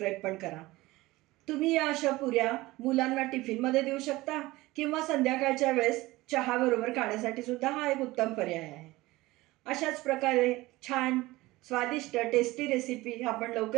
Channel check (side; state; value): left; quieter; 19.5 dB